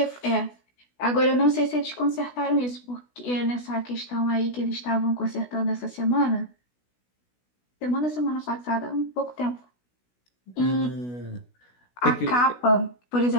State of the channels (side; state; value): right; late; 16 ms